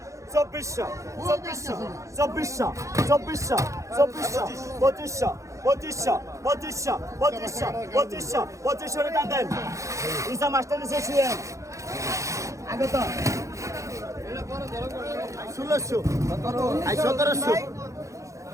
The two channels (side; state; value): left; late; 0.15 ms